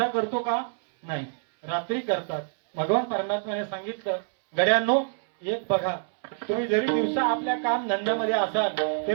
करतो का? नाही, रात्री करतात. भगवान परमात्म्याने सांगितलं, गड्यांनो एक बघा, तुम्ही जरी दिवसा आपल्या काम धंद्यामध्ये असाल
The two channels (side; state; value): left; silent; 61 dB below the other